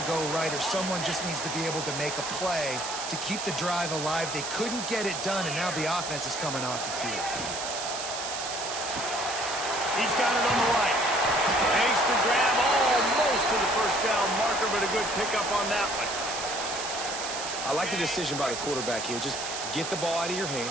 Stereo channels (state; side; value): noise; right; hiss, 6 dB below the sound